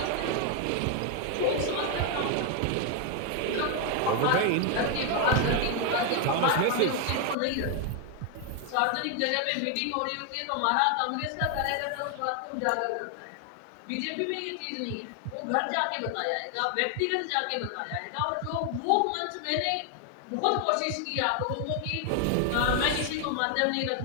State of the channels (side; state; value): both; different; correlation 0.00